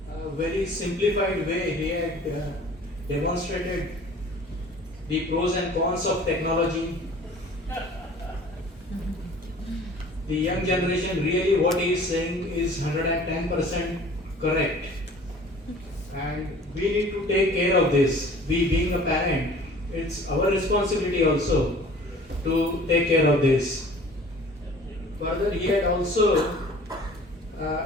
A very simplified way he had demonstrated the pros and cons of technology. The young generation, really what he is saying is 110% correct. And we need to take care of this. We being a parent, it's our responsibility also to take care of this. Further, he had also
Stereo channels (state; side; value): normal; both; correlation 0.47